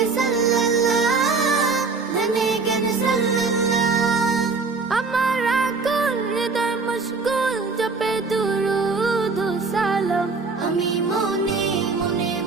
সাল্লাল্লাহ, ধ্যানে জ্ঞানে সাল্লাল্লাহ। আমার আকুল হৃদয় মশগুল জপে দুরূদ ও সালাম। আমি মনে মনে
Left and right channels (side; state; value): left; quieter; 4.3 dB